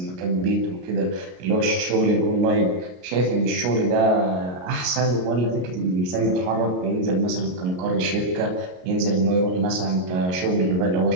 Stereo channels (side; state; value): left; late; 33 ms